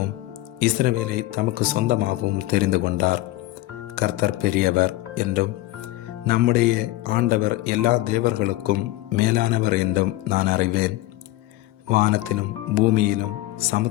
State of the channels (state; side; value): quieter; right; 17.5 dB